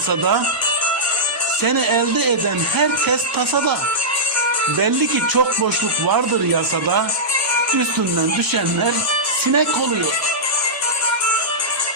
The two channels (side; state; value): both; normal; correlation -0.13